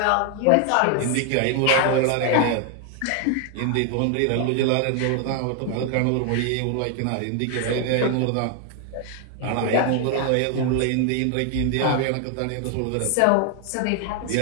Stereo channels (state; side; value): different; both; correlation 0.00